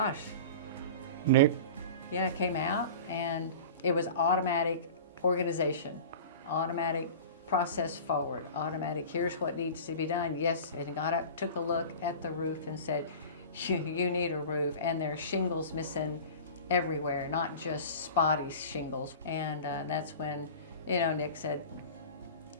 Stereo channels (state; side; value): inverted; both; correlation -0.36